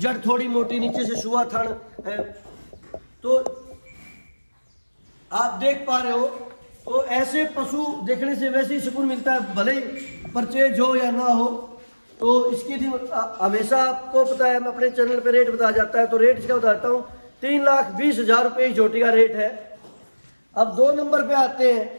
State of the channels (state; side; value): inverted; both; correlation -1.00